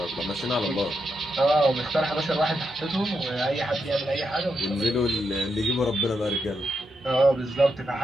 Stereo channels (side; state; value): both; normal; correlation 0.83